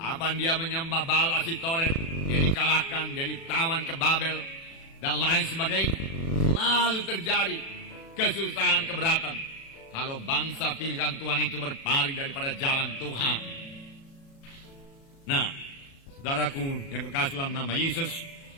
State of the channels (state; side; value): late; right; 36 ms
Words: dia menyembah Baal Asitoret, dia dikalahkan, dia ditawan ke Babel, dan lain sebagainya. Lalu terjadi kesusahan, keberatan. Kalau bangsa pilihan Tuhan itu berpaling daripada jalan Tuhan. Nah, saudaraku yang kekasih dalam nama Yesus,